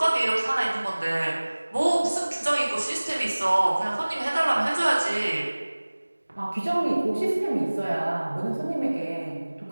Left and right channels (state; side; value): inverted; both; correlation -1.00